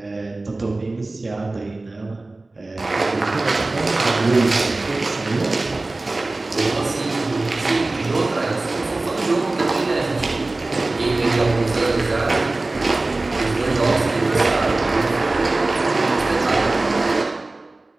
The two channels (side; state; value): left; quieter; 3.1 dB